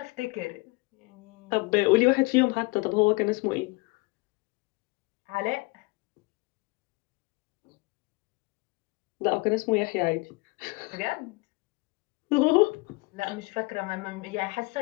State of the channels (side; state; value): right; quieter; 25.9 dB